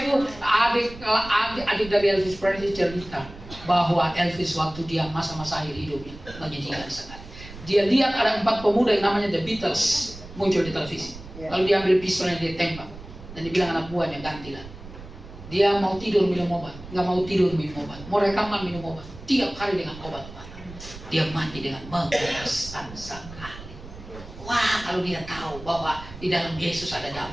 adik dari Elvis Presley cerita bahwa Elvis waktu dia masa-masa akhir hidupnya menyedihkan sekali. Dia lihat ada 4 pemuda yang namanya The Beatles muncul di televisi. Lalu dia ambil pistolnya, dia tembak. Dan dia bilang anak buahnya, gantilah. Dia mau tidur minum obat, nggak mau tidur minum obat, mau rekaman minum obat, tiap hari dengan obat-obatan. Dia mati dengan mengenaskan sekali. Wah, kalau dia tahu bahwa di dalam Yesus ada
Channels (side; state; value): right; noise; rumble, 15 dB below the sound